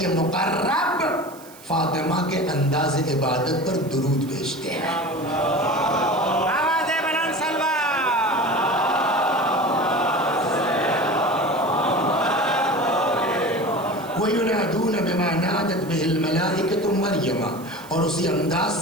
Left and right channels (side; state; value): right; noise; hiss, 21 dB below the sound